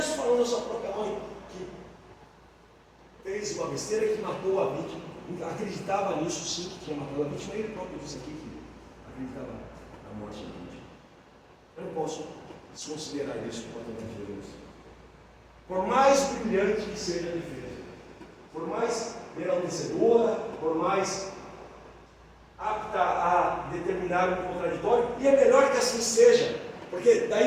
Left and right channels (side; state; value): both; identical; correlation 1.00